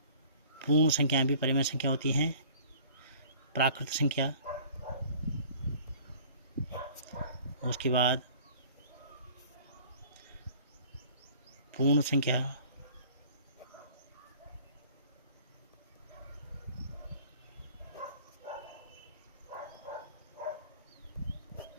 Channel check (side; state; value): both; inverted; correlation -0.50